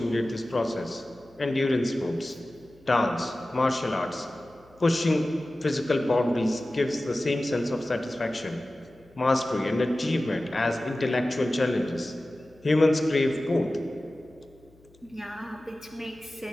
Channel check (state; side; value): noise; left; hum, 29 dB below the sound